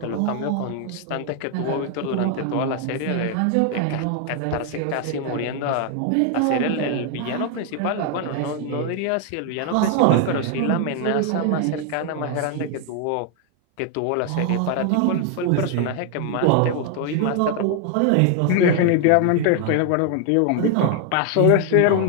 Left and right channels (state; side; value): different; both; correlation 0.00